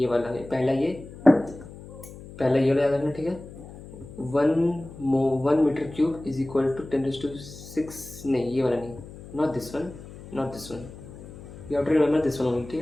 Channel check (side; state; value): left; noise; hum, 16 dB below the sound